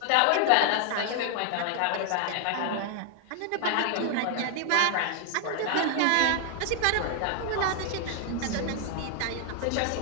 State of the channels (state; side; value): different; both; correlation 0.00